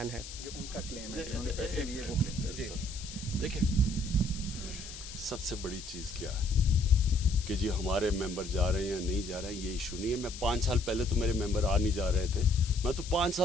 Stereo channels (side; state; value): left; noise; hiss, 12 dB below the sound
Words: है? उनका क्लेम है उन्होंने पैसे लिए वो क्लेम। देखिए सबसे बड़ी चीज़ क्या है कि जी हमारे मेंबर जा रहे हैं या नहीं जा रहे हैं, ये इशू नहीं है। मैं 5 साल पहले तो मेरे मेंबर आ नहीं जा रहे थे, मैं तो 5